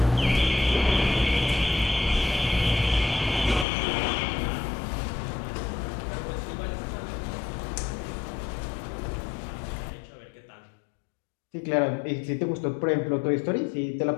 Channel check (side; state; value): right; drops out; at 3.7 s